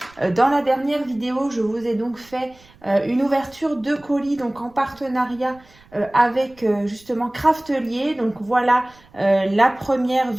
dans la dernière vidéo. Je vous ai donc fait une ouverture de colis donc en partenariat avec justement Craftelier. Donc voilà la première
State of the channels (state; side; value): noise; right; rumble, 27 dB below the sound